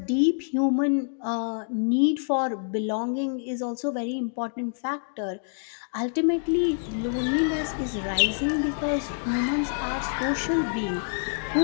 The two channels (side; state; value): right; silent; digital silence